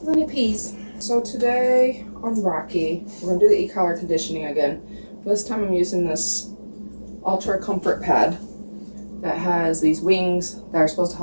when he pees. So today on Rocky, we're gonna do the e-collar conditioning again. This time I'm using this Ultra Comfort Pad that has these wings that are supposed to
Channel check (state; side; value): inverted; both; correlation -1.00